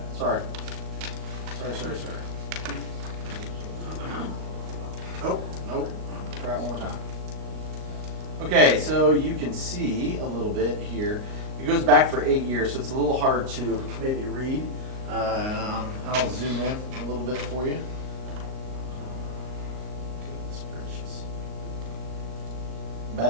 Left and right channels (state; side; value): late; left; 38 ms